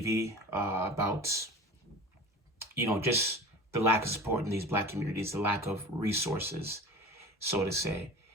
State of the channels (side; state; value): both; normal; correlation 0.36